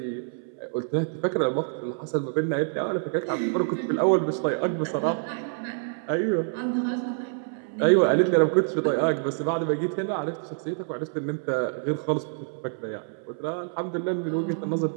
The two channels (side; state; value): left; silent; 60 dB below the other